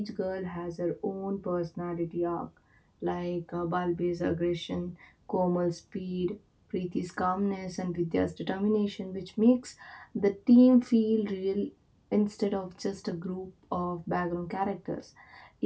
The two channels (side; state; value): both; identical; correlation 1.00